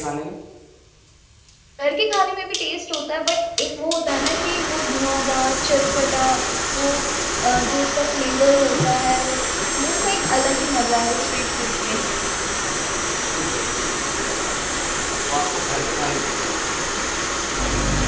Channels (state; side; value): identical; both; correlation 1.00